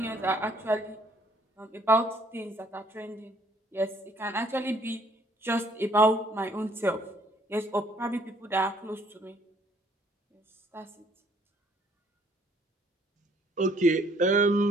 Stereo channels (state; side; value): normal; both; correlation 0.63